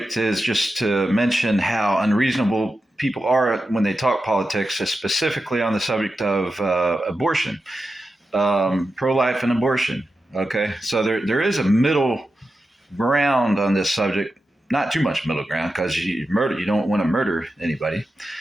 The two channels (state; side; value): normal; both; correlation 0.91